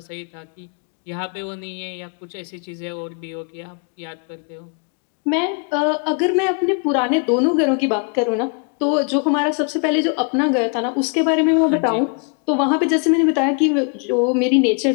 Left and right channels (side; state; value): right; quieter; 39.7 dB